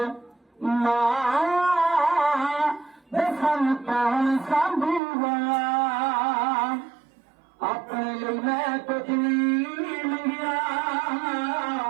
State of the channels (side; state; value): left; drops out; at 5.0 s